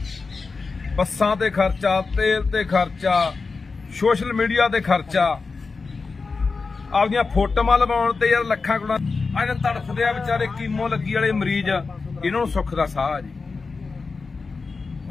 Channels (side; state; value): right; quieter; 4.4 dB